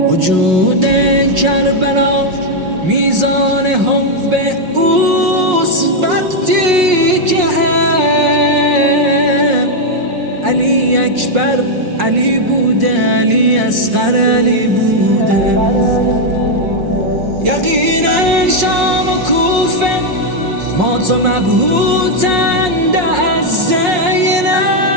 وجود کربلا میزان حب اوست، وقتی که علی اکبر علی بوده، علی اصغر علی بوده. یقینا شام و کوفه مات و مبهوتند از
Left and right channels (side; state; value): left; late; 5.5 ms